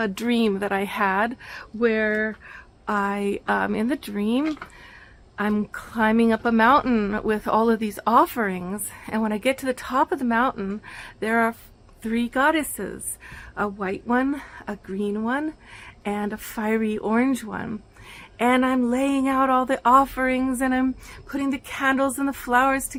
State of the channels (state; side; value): identical; both; correlation 1.00